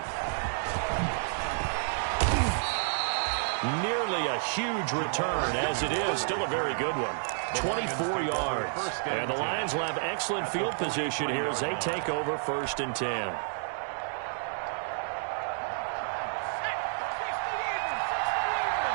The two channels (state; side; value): silent; left; digital silence